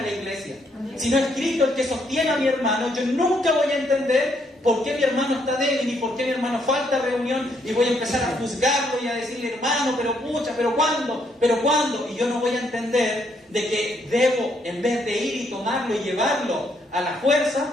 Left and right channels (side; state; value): both; normal; correlation 0.73